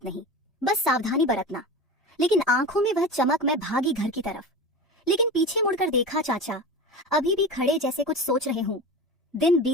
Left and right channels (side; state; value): both; normal; correlation 0.30